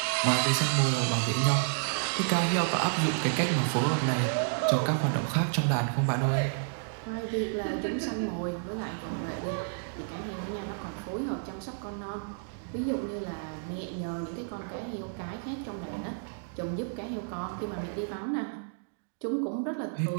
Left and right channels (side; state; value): left; silent; digital silence